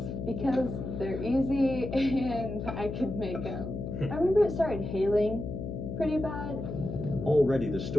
because they're easy and I could make them. I remember it started hailing pretty bad. Already the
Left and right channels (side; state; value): left; noise; hum, 6 dB below the sound